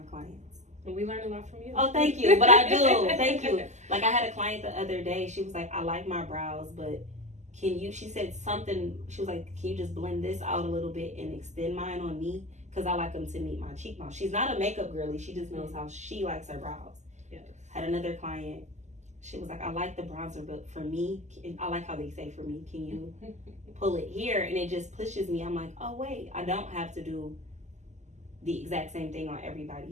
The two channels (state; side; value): late; left; 0.34 ms